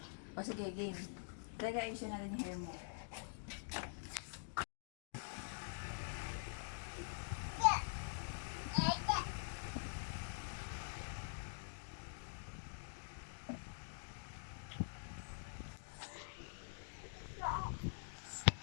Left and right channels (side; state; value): right; silent; digital silence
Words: O, sige, game. Teka, ayusin na rin yung hair mo.